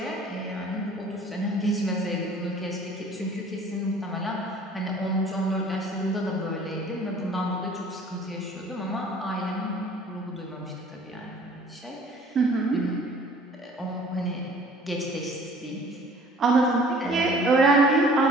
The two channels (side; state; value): both; normal; correlation 0.51